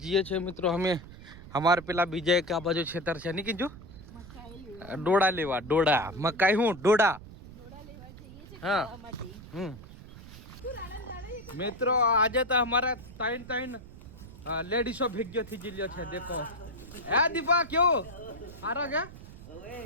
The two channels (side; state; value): right; noise; rumble, 16 dB below the sound